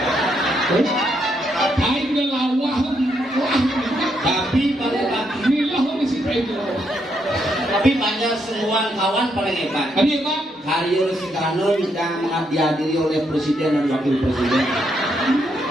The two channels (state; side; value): normal; both; correlation 0.77